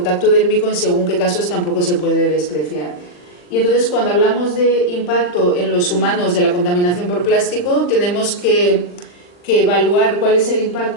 dérmico en según qué casos tampoco se puede despreciar. Y entonces cuando hablamos de impacto en los humanos de la contaminación por plástico, tenemos que que evaluar cuál es el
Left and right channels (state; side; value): late; right; 40 ms